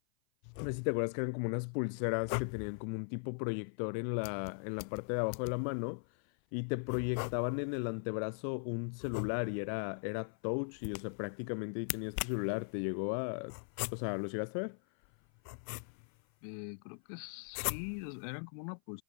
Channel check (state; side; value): silent; right; 52 dB below the other